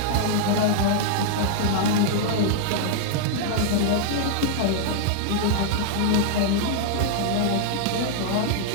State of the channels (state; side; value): different; both; correlation -0.01